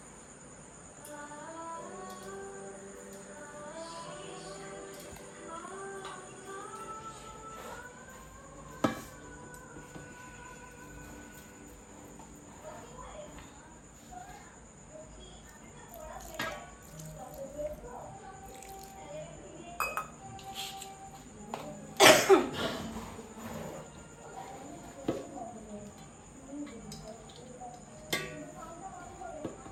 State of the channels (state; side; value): identical; both; correlation 1.00